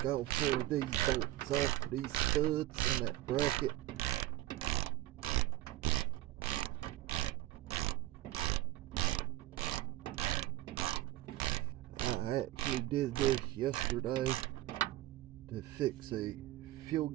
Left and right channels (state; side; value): quieter; left; 16.0 dB